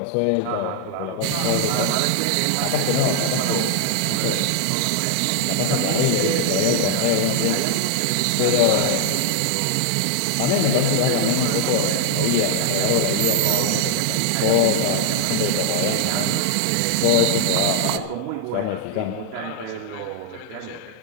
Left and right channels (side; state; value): both; different; correlation 0.00